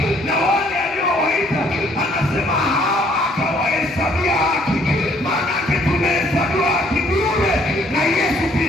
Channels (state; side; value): normal; both; correlation 0.63